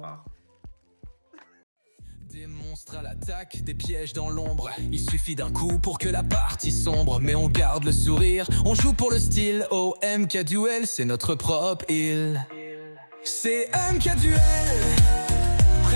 Des monstres à l'attaque, des pièges dans l'ombre. Il suffit d'un coup pour que la partie sombre. Mais on garde le sourire, on joue pour le style. Oh, MK Duel, c'est notre propre île. C'est MK Duel,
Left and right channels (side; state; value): both; inverted; correlation -1.00